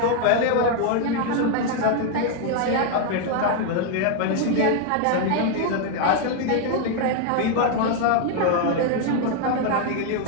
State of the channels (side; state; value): both; different; correlation 0.00